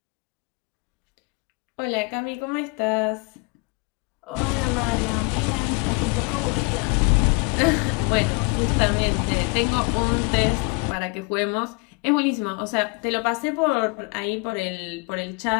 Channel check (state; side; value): quieter; right; 30.2 dB